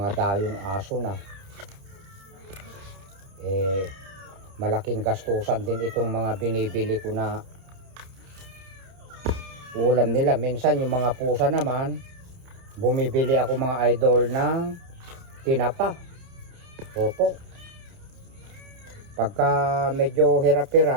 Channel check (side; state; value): left; late; 30 ms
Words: dayong aso na. Malaking gastusan din itong mga binibili ko na ulam nila. Minsan yung mga pusa naman, bumibili ako mga idol ng tinapa. Opo. Pagka medyo